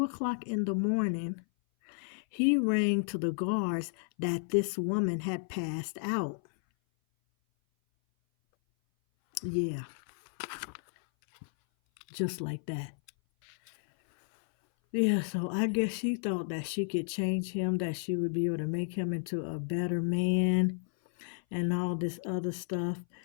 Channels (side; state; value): right; silent; 56 dB below the other